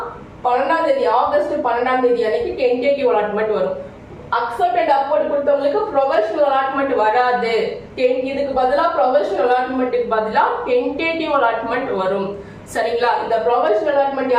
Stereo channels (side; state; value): both; identical; correlation 1.00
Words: 12ஆம் தேதி ஆகஸ்ட் 12ஆம் தேதி அன்னைக்கு டென்டேட்டிவ் அலாட்மெண்ட் வரும். அக்செப்ட் அண்ட் அப்வர்ட் கொடுத்தவங்களுக்கு ப்ரொஃபஷனல் அலாட்மெண்ட் வராது. இதுக்கு பதிலா ப்ரொஃபஷனல் அலாட்மெண்ட்டுக்கு பதிலா டென்டேட்டிவ் அலாட்மெண்ட் வரும். சரிங்களா? இந்த ப்ரொஃபஷனல் அலாட்மெண்ட்